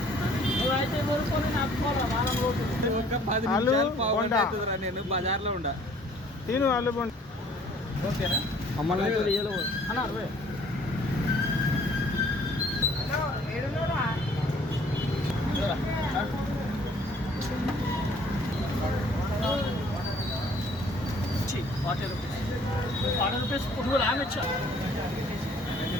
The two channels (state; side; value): normal; both; correlation 0.57